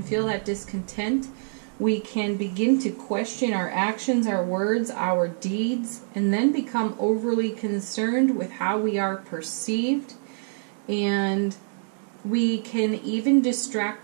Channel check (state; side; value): silent; left; digital silence